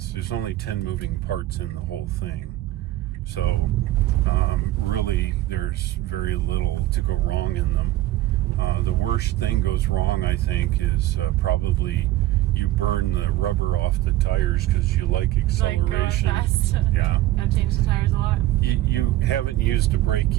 There's only 10 moving parts in the whole thing. So really there's very little to go wrong in them. The worst thing goes wrong, I think, is probably you burn the rubber off the tires because you like acceleration. Fast. Yeah. Gotta change the tires a lot. You haven't used a brake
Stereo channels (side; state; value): left; quieter; 15.4 dB